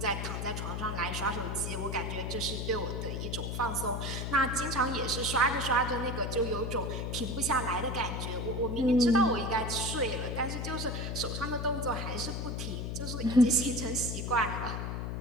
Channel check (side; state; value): left; noise; hum, 3 dB below the sound